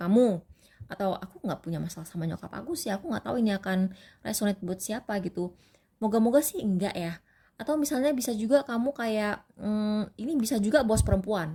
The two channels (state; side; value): identical; both; correlation 1.00